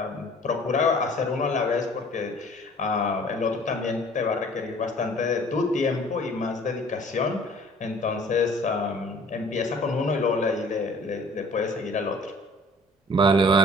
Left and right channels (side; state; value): both; normal; correlation 0.51